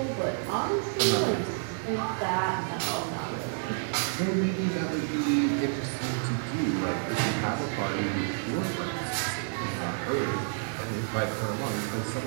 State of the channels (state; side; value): silent; left; 58 dB below the other